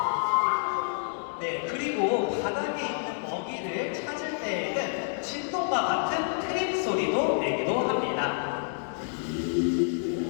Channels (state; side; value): silent; right; digital silence